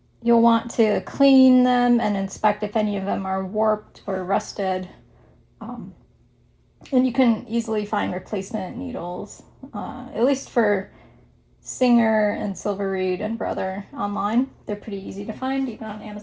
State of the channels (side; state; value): both; identical; correlation 1.00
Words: You'll want to clean them and inspect if any of them are warped or rusted. And you can easily find replacement needles, at least for Singer and Silver Reed and Brother online. They're pretty easy to find, even on